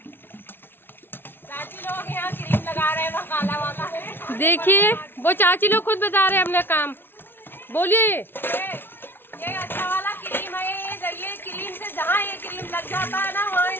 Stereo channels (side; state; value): right; late; 0.11 ms